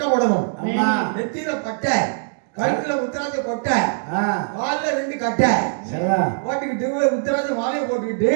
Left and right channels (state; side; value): silent; left; 65 dB below the other